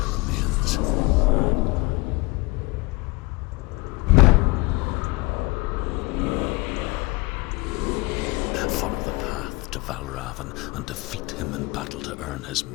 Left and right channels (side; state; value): right; quieter; 24.5 dB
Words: remains. Follow the path to Valravn and defeat him in battle to earn his